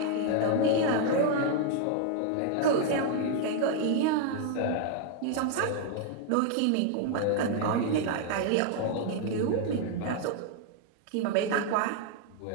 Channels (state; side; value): different; both; correlation 0.00